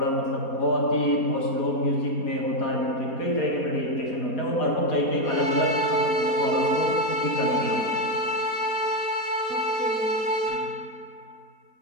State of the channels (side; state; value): right; late; 4.2 ms